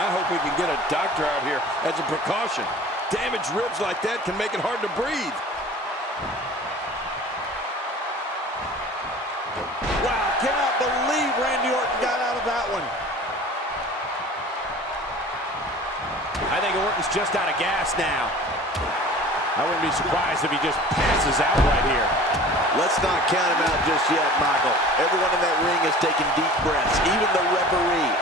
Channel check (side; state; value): both; normal; correlation 0.42